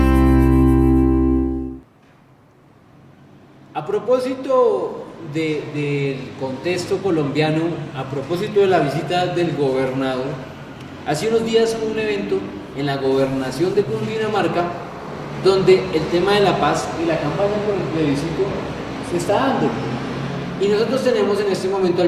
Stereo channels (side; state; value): both; identical; correlation 1.00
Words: A propósito del contexto colombiano a propósito de la visita del gobernador. Hace unos días hubo un evento en la gobernación de Cundinamarca donde el tema de la paz y la campaña por el plebiscito se está dando. Y nosotros tenemos en este momento